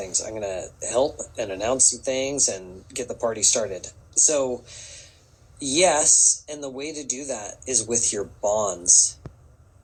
I'm going to help and announce some things and get the party started. So, yes, and the way to do that is with your bonds.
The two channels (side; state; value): both; identical; correlation 1.00